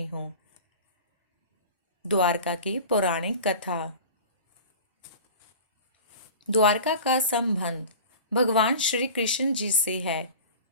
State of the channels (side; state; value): both; inverted; correlation -0.37